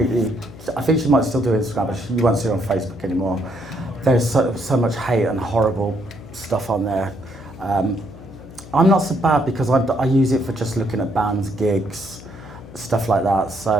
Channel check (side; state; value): left; noise; hum, 17 dB below the sound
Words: I think she might still do Instagram, but you won't see her on Facebook anymore. There's so much hate and horrible stuff on there. I'm not so bad because I use it for just looking at bands, gigs, stuff like that.